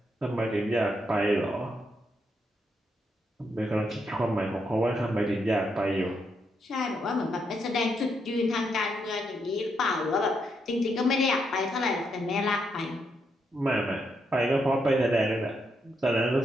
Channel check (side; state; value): both; normal; correlation 0.79